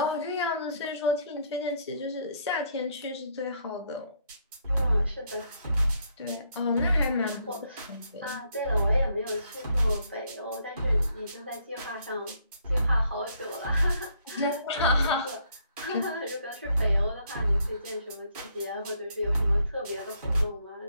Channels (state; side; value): inverted; both; correlation -0.69